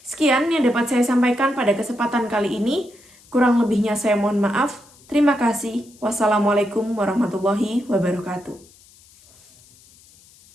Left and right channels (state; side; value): noise; left; hiss, 27 dB below the sound